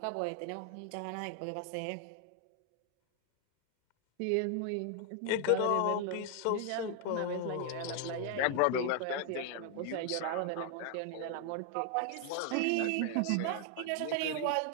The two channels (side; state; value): both; different; correlation 0.00